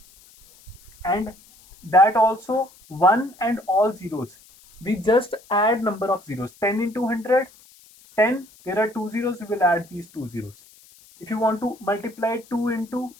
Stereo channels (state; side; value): noise; left; hiss, 26 dB below the sound